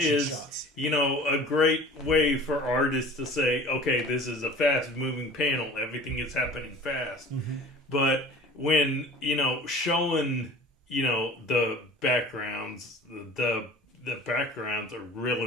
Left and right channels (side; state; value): both; normal; correlation 0.42